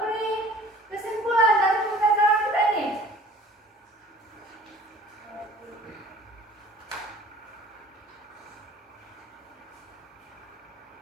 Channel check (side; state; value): both; normal; correlation 0.49